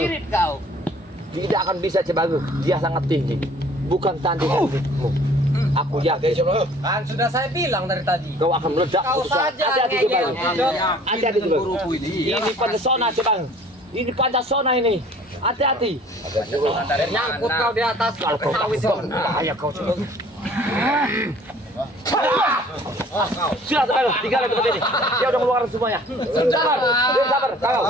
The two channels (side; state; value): both; normal; correlation 0.52